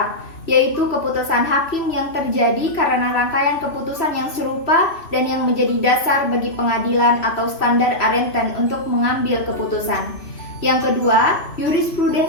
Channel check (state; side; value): late; right; 3.0 ms